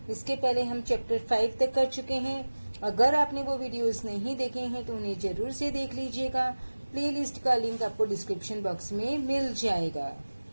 इसके पहले हम चैप्टर 5 तक कर चुके हैं। अगर आपने वो वीडियोस नहीं देखे हैं तो उन्हें जरूर से देख लीजिएगा। प्लेलिस्ट का लिंक आपको डिस्क्रिप्शन बॉक्स में मिल जाएगा।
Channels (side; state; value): both; inverted; correlation -1.00